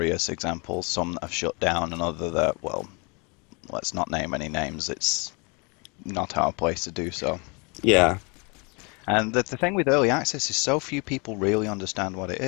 examples, some that have shut down, and other that, well, let's not name any names. It's not our place to do so. Yeah. And the thing with early access is so few people really understand what it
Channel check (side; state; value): right; quieter; 30.7 dB